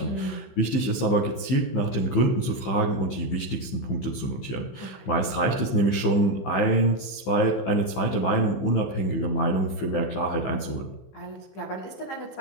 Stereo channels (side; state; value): right; late; 15 ms